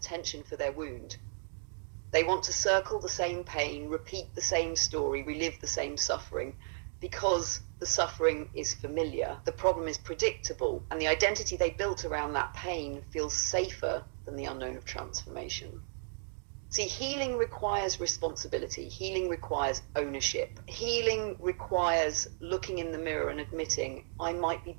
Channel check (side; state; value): left; silent; digital silence